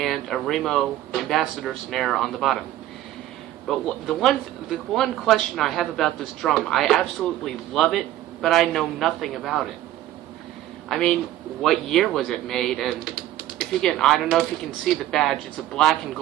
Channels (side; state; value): left; quieter; 13.8 dB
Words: a Remo Ambassador snare on the bottom. But the one question I have about this drum, I absolutely love it, but I know nothing about it. I mean, what year was it made? And if you can, I don't know if you can see the badge. It's a black and